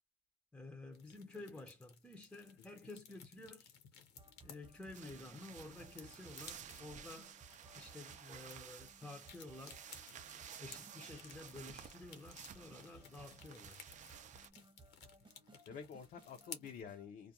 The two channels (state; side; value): normal; both; correlation 0.43